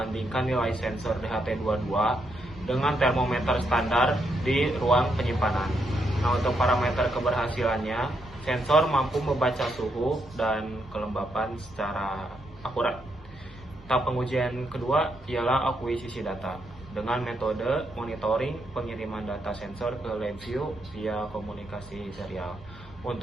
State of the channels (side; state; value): both; normal; correlation 0.79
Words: nilai sensor DHT22 dengan termometer standar di ruang penyimpanan. Nah, untuk parameter keberhasilannya, sensor mampu membaca suhu dan kelembapan secara akurat. Tahap pengujian kedua ialah akuisisi data dengan metode monitoring pengiriman data sensor ke LabVIEW via komunikasi serial.